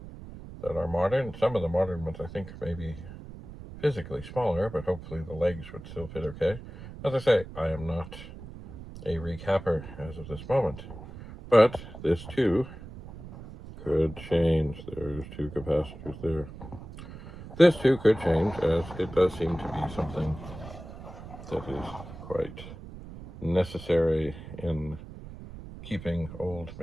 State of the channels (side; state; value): right; noise; rumble, 13 dB below the sound